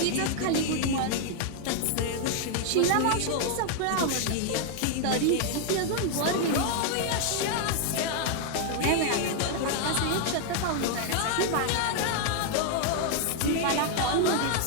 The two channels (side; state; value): both; different; correlation 0.00